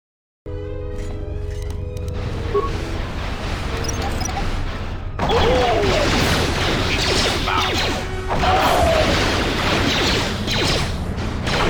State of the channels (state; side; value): identical; both; correlation 1.00